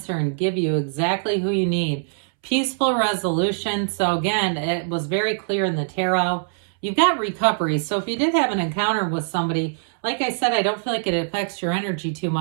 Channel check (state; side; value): silent; left; 64 dB below the other